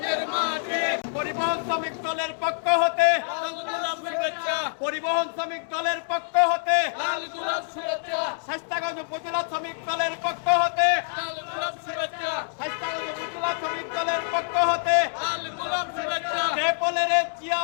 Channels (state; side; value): silent; right; digital silence